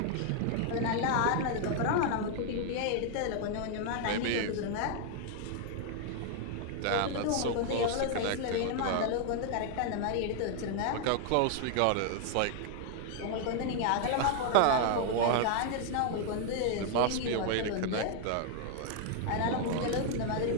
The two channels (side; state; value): both; different; correlation 0.00